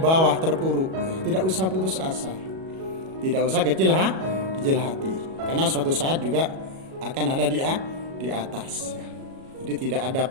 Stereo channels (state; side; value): late; left; 37 ms